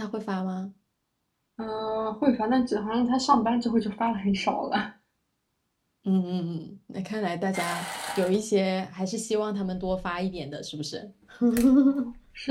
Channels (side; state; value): both; identical; correlation 1.00